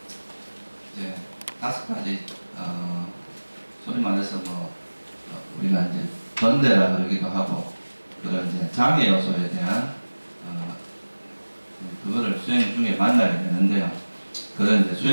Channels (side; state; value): both; inverted; correlation -1.00